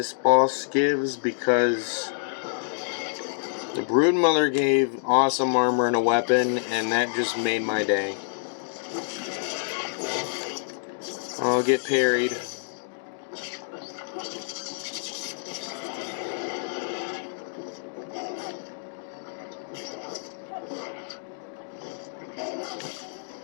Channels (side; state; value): right; silent; digital silence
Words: boss gives, because the Broodmother gave awesome armor and a weapon, and that just made my day. I'll get parried.